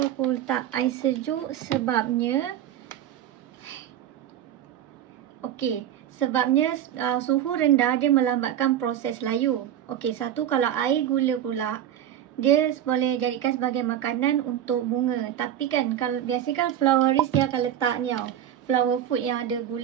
aku letak air sejuk? Sebabnya sebabnya suhu rendah dia melambatkan proses layu. Satu, kalau air gula pula dia boleh jadikan sebagai makanan untuk bunga. Tapi kan kalau biasa kan flowerist dia akan letak ni tau, flower food yang ada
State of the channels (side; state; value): left; quieter; 10.8 dB